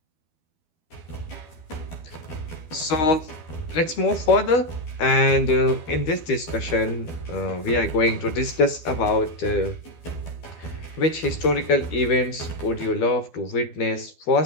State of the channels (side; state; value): right; late; 12 ms